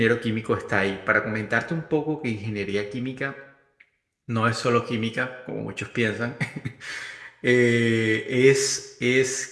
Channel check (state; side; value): identical; both; correlation 1.00